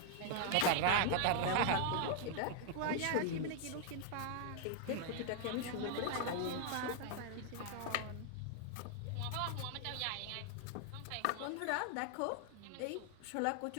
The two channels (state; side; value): different; both; correlation 0.00